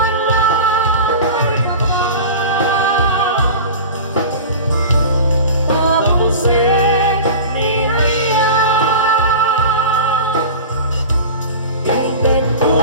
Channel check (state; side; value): inverted; both; correlation -0.33